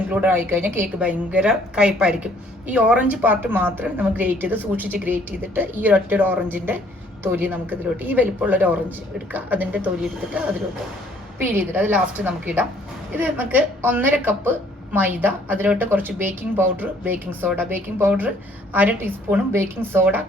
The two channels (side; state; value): both; normal; correlation 0.61